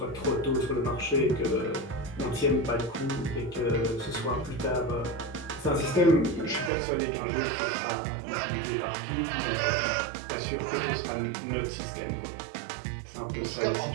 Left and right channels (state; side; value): drops out; left; at 6.7 s